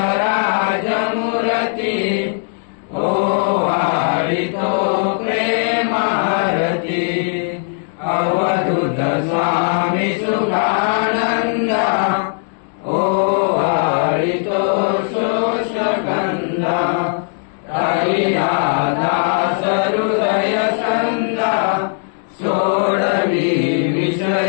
राज मूर्ति ओवाळितो प्रेमारती। अवधूत स्वामी सुधानंद ओवाळितो शोषगंध। हरिया दास हृदय छंद सोडवी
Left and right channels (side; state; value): right; silent; digital silence